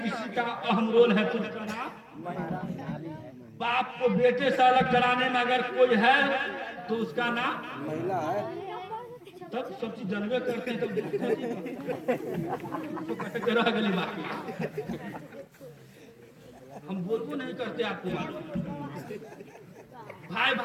का अहम रोल है तो उसका नाम, बाप को बेटे से अलग कराने में अगर कोई है तो उसका नाम महिला है। तब सब चीज जानवे करते हैं तो कैसे करो अगली बात। हम बोलबो नहीं करते, आपको मालूम। भाई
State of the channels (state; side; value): identical; both; correlation 1.00